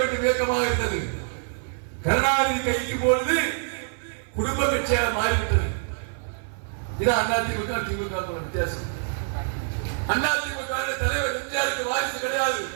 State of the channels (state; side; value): silent; left; 57 dB below the other